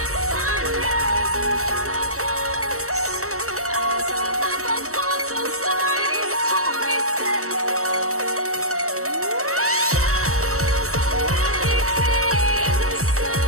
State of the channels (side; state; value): left; late; 0.64 ms